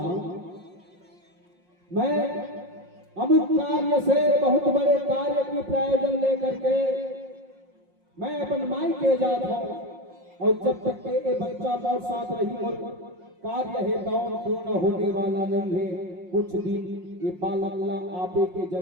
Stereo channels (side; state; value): left; late; 5.6 ms